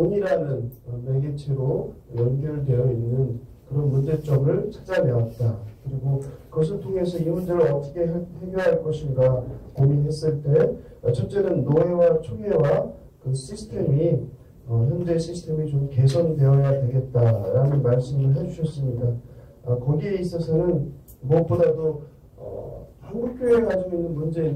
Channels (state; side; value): identical; both; correlation 1.00